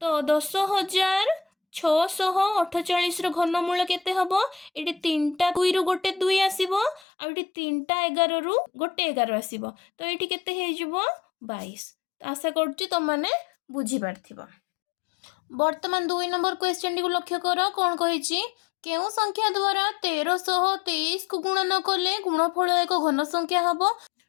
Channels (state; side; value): drops out; right; at 7.0 s